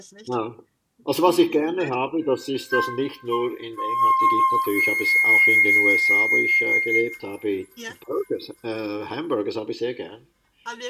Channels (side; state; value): both; identical; correlation 1.00